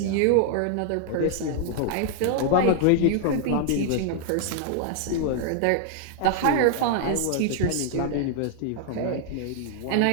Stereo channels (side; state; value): both; different; correlation 0.00